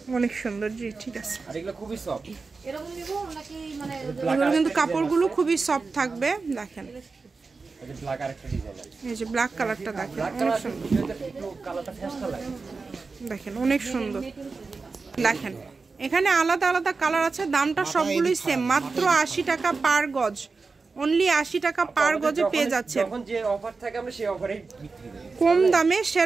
অনেক সুন্দর, জি ঠিক আছে। এগুলো কিন্তু কাপড়গুলো খুবই সফট থাকবে। দেখেন এই যে ব্ল্যাক কালারটা দেখেন, অনেক সুন্দর। দেখেন অনেক সুন্দর। দেখেন এখানে আলাদা আলাদা কালার আছে, দামটা সবগুলোই সেম, মাত্র 80 টাকা পার গজ। অনলি 80 টাকা পার গজে পেয়ে যাচ্ছে। কম দামে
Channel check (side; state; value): left; quieter; 4.3 dB